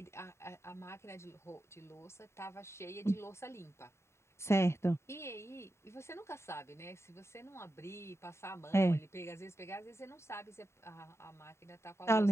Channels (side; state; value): right; late; 0.13 ms